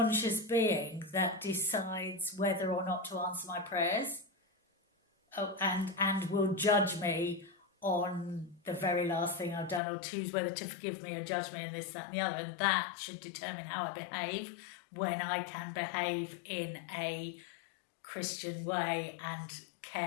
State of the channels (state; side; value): drops out; right; at 9.8 s